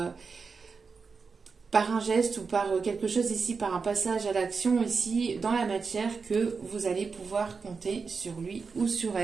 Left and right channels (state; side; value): quieter; left; 5.0 dB